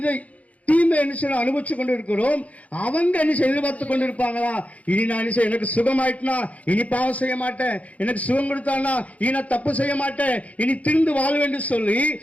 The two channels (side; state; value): right; late; 0.068 ms